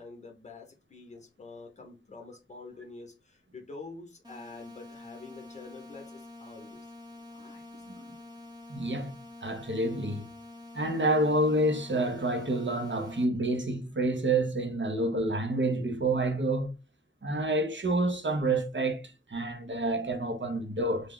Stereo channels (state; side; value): normal; both; correlation 0.39